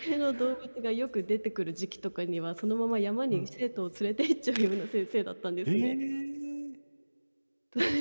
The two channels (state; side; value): inverted; both; correlation -1.00